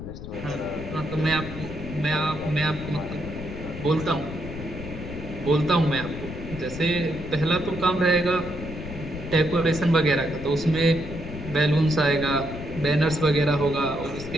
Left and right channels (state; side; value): noise; left; rumble, 10 dB below the sound